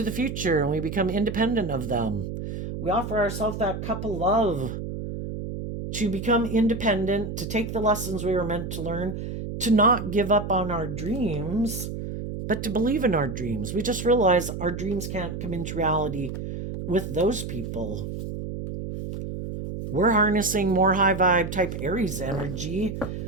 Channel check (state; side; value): noise; right; hum, 6 dB below the sound